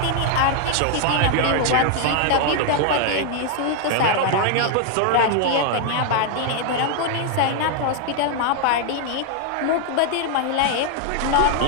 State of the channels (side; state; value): both; different; correlation 0.00